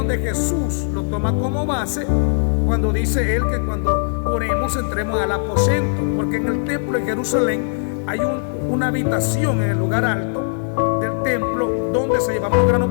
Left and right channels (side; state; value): right; silent; digital silence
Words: Jesús lo toma como base cuando dice él que cuando oremos entremos al aposento, porque en el templo de Jerusalén hay una habitación en el lugar alto del templo donde se llevaban los granos